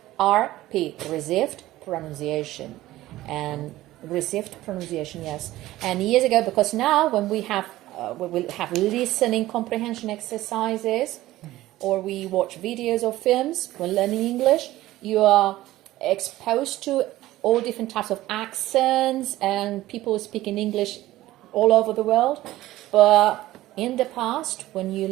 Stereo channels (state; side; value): quieter; left; 16.1 dB